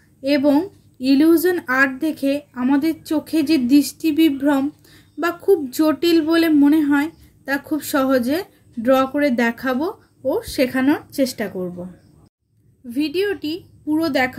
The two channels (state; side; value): identical; both; correlation 1.00